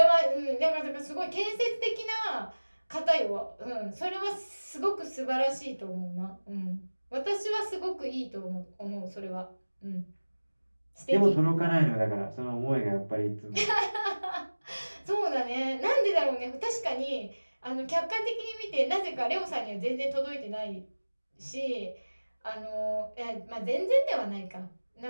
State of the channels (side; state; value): both; inverted; correlation -1.00